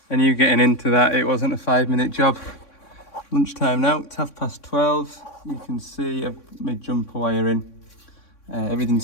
And you getting into that, it wasn't a 5-minute job. Lunchtime now, it's 12:30. You can see I've made jumper wire in.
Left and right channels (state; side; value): late; right; 3.6 ms